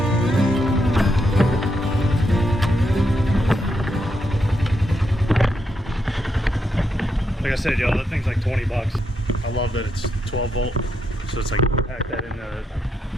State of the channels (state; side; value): normal; both; correlation 0.81